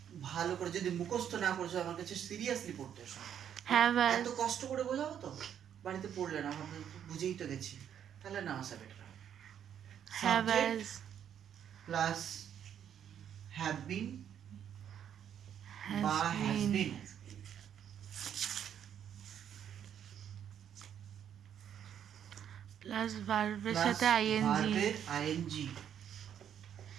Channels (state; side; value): quieter; left; 9.2 dB